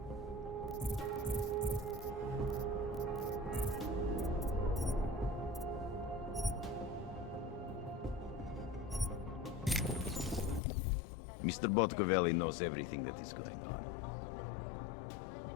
Mr. Botkovelli knows everything that is going on.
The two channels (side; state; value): right; drops out; at 10.6 s